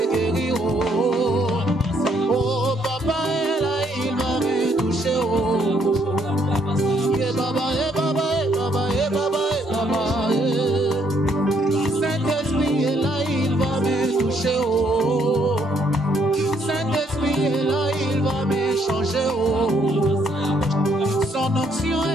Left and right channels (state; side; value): normal; both; correlation 0.70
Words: guérir. Oh, papa est là, il va me toucher. Saint-Esprit est là, il va me toucher. Saint-Esprit est là, il va me changer. Son onction